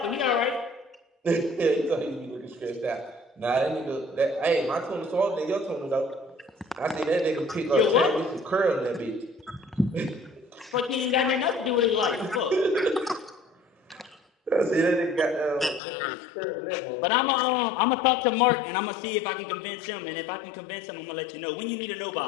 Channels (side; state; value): right; drops out; at 15.8 s